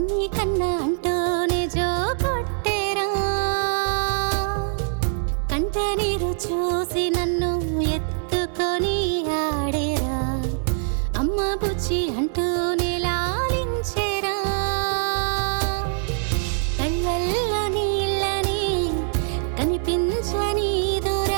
కన్న అంటూనే జో కొట్టేరా. కంట నీరు చూసి నన్ను ఎత్తుకొని ఆడేరా, అమ్మ బుజ్జి అంటూనే లాలించేరా. కళ్ళల్లో నీళ్ళని కనిపించని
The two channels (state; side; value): silent; left; 62 dB below the other